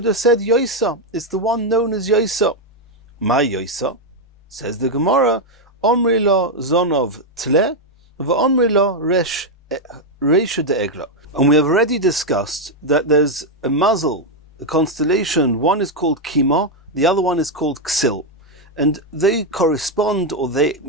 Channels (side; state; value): both; normal; correlation 0.02